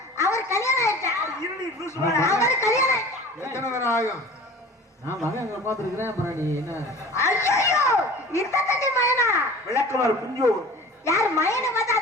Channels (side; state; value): both; normal; correlation 0.41